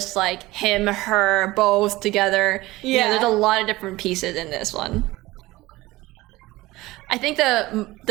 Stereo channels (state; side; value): quieter; left; 19.0 dB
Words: like him, her, both together. You know, there's a lot of different pieces in this one. I think